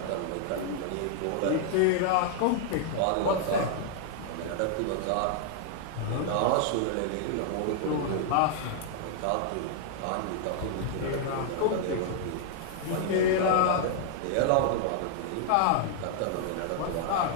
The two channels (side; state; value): both; different; correlation -0.01